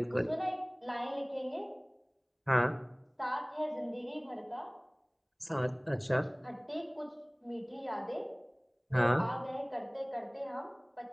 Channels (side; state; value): both; identical; correlation 1.00